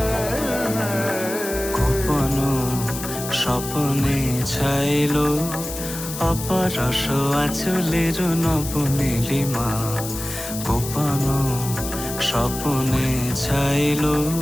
স্বপনে ছাইল অপরস আঁচলের নবনীলিমা। গোপন স্বপনে ছাইল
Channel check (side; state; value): left; noise; hiss, 8 dB below the sound